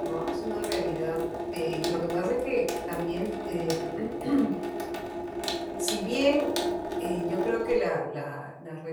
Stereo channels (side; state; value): both; identical; correlation 1.00